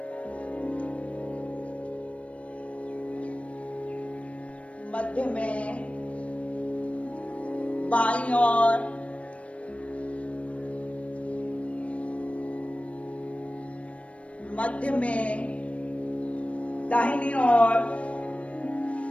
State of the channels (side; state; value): right; late; 0.063 ms